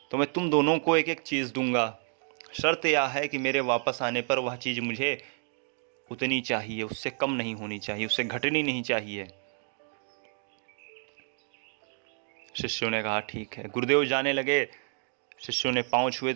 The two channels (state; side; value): silent; left; 58 dB below the other